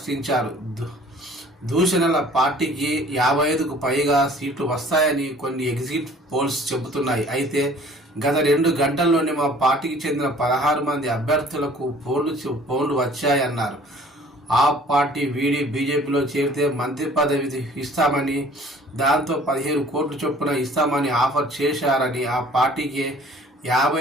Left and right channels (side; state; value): both; normal; correlation 0.52